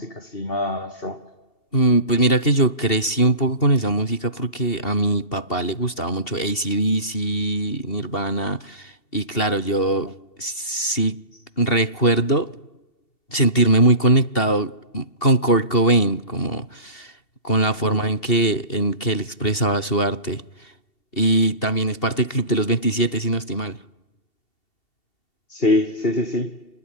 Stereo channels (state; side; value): late; right; 2.7 ms